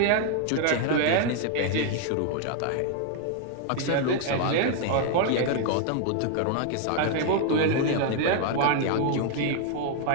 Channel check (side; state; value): both; different; correlation 0.00